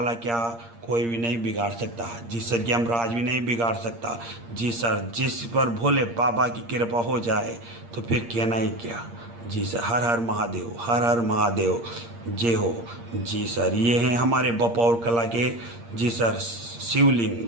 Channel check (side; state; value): left; late; 8.6 ms